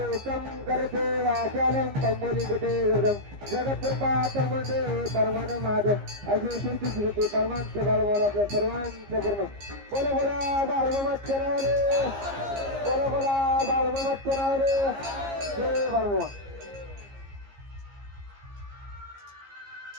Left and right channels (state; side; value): late; left; 15 ms